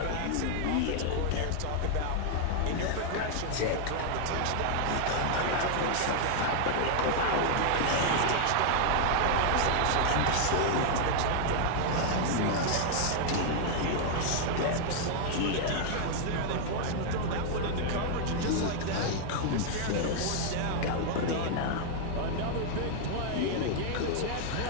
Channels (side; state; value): both; different; correlation 0.00